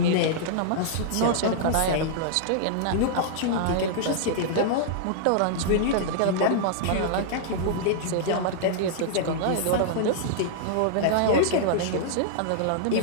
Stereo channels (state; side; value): different; both; correlation -0.01